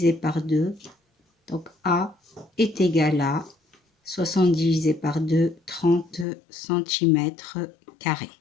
par 2. Donc A est égal à 60 divisé par 2, 30 cm².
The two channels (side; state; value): right; drops out; at 6.2 s